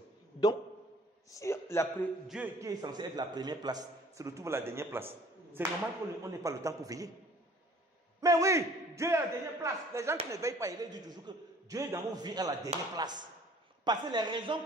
Donc, si Dieu qui est censé être la première place se retrouve à la dernière place, c'est normal qu'on n'ait pas le temps pour veiller. Mais oui, Dieu est à la dernière place. Les gens qui ne veillent pas, ils disent toujours que Dieu est dans vos vies à la dernière place. Parce que les raisons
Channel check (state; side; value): normal; both; correlation 0.53